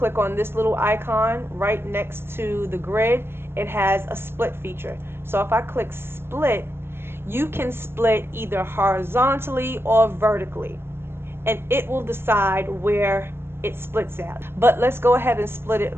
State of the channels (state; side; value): late; left; 0.11 ms